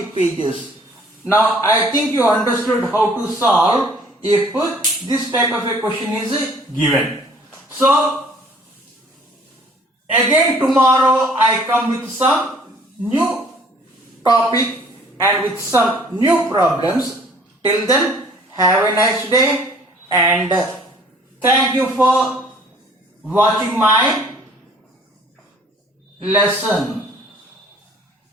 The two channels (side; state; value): both; normal; correlation 0.55